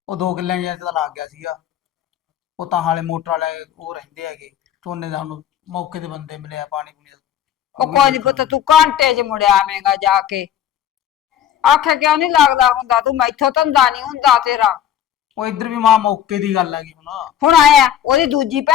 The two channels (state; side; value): quieter; right; 10.3 dB